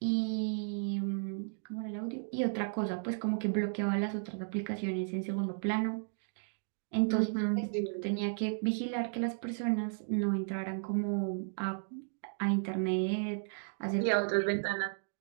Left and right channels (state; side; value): silent; left; digital silence